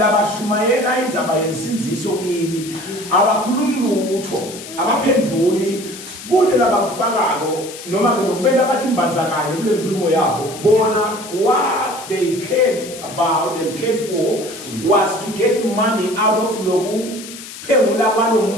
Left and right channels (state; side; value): noise; left; hiss, 13 dB below the sound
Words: indzaba yensinziso kini abakhulumi lutho abaphenduli kude labakufakako noma ke lokubenda bathi imbanzakanye kule nkulumo yabo bona what they cared about and cared for was to get money out of loku phengula kwalo